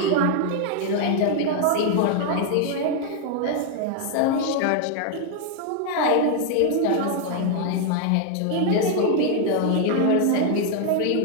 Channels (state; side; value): different; both; correlation 0.00